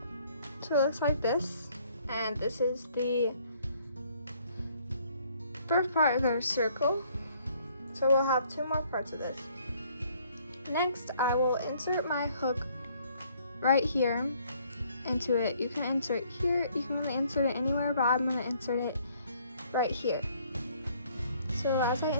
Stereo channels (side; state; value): both; inverted; correlation -0.63